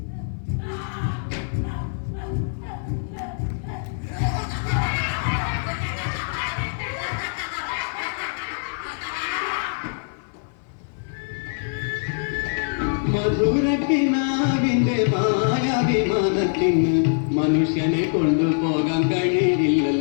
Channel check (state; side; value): silent; right; 57 dB below the other